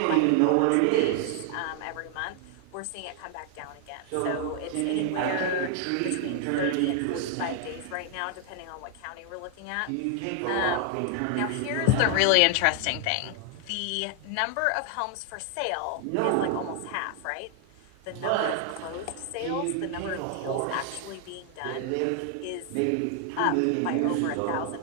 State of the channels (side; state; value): both; different; correlation 0.00